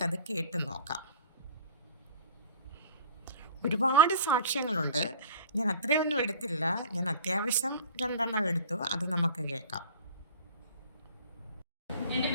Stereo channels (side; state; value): both; inverted; correlation -0.44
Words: കേട്ട് നോക്കാം. ഒരുപാട് സാക്ഷ്യങ്ങളുണ്ട്. ഞാൻ അത്രയൊന്നും എടുത്തില്ല. ഞാൻ അത്യാവശ്യം 2 എടുത്തു. അത് നമുക്ക് കേൾക്കാം. എൻ്റെ